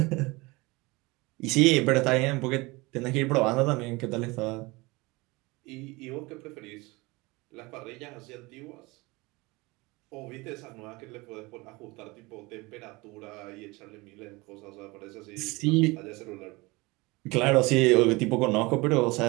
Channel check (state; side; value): quieter; left; 23.6 dB